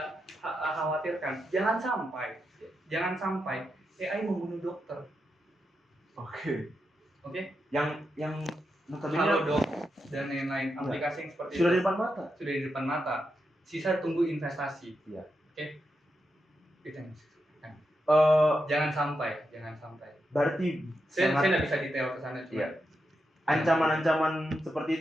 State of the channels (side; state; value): both; normal; correlation 0.86